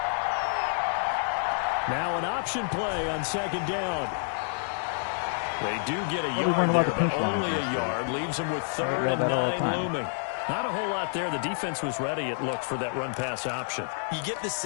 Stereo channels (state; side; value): silent; right; 59 dB below the other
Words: Now an option play on 2nd down. They do get a yard there, but only a yard. Leaves them with 3rd and 9 looming. Not a whole lot there. The defense was ready, it looked, for that run-pass option. You get the